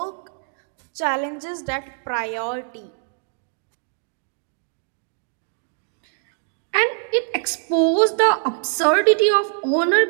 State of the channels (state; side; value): silent; left; digital silence